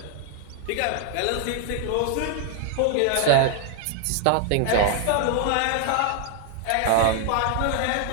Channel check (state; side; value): different; both; correlation 0.00